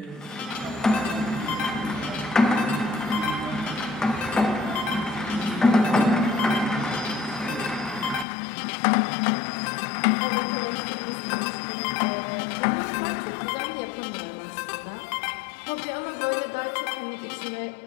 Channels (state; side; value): drops out; right; at 8.2 s